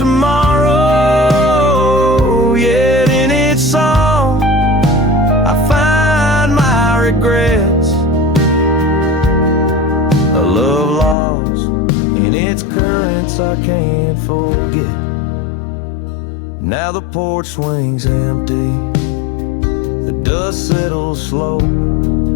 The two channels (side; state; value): right; drops out; at 11.2 s